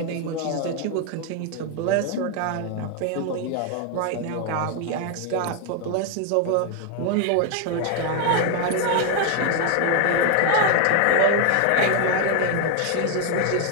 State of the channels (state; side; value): different; both; correlation 0.01